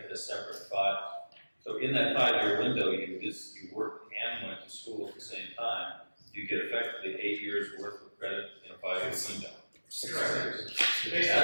separate 5. So in that 5-year window, you worked and went to school at the same time, you get effectively 8 years worth of credit in a 5-year window. 6 years. Based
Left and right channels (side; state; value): both; inverted; correlation -1.00